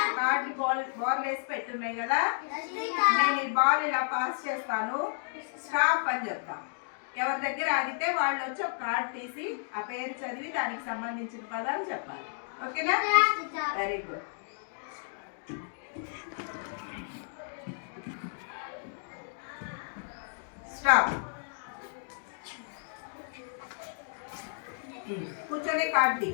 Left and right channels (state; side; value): silent; right; digital silence